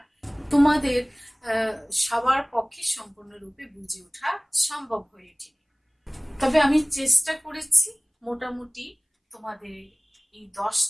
তোমাদের সবার পক্ষে সম্পূর্ণরূপে বুঝে ওঠা সম্ভব হয়ে ওঠেনি। তবে আমি চেষ্টা করেছি মোটামুটি তোমাদের এই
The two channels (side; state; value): both; identical; correlation 1.00